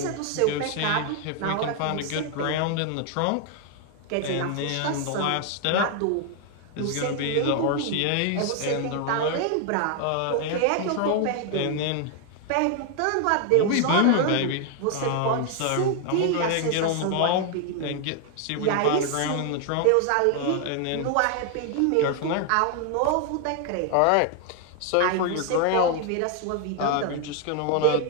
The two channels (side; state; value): both; different; correlation 0.00